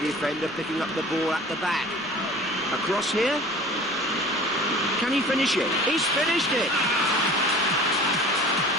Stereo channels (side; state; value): left; noise; rumble, 27 dB below the sound